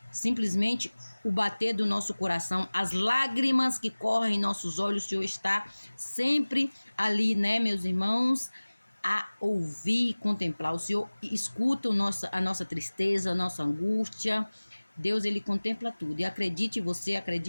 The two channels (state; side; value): inverted; both; correlation -1.00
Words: simplesmente o bater do nosso coração, as lágrimas que correm em nossos olhos. O Senhor está sempre ali, né, meus irmãos, a ouvir e contemplar. O Senhor escuta a nossa tristeza, a nossa angústia. Deus, Ele contempla tudo. E acredite você,